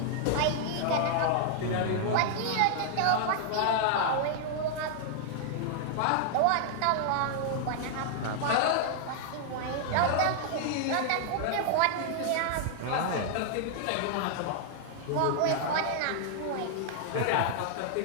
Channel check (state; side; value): different; both; correlation -0.01